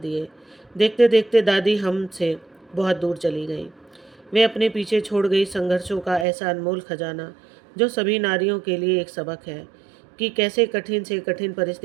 देखते देखते दादी हमसे बहुत दूर चली गई। वे अपने पीछे छोड़ गई संघर्षों का ऐसा अनमोल खजाना जो सभी नारियों के लिए एक सबक है कि कैसे कठिन से कठिन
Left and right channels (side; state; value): left; drops out; at 6.2 s